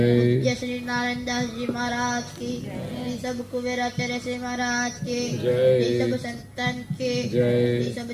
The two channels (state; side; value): identical; both; correlation 1.00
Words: श्री नारायण दास जी महाराज की जय। सब कुबेराचार्य श्री महाराज के जय। सब संतन के जय। सब